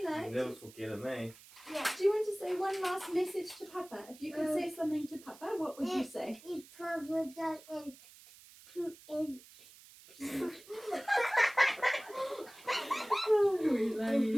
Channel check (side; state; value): right; noise; hiss, 21 dB below the sound